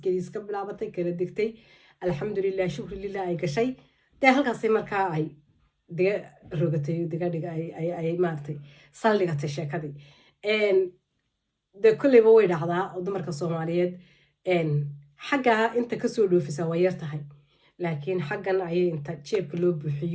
iska bilaabatay kala degtay alxamdulilah shukri lilah ay gashay dee halkaasay markaa ay diga rogatay digadhiga ay maaragtay saldhigatay sheekadii dee kolleyba way dhacdaa oo dumarka soomaaliyeed xaggaa inta kasoo dhoofisa waa yar tahay laakiin xaggan ayay inta jeebka loo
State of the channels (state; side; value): identical; both; correlation 1.00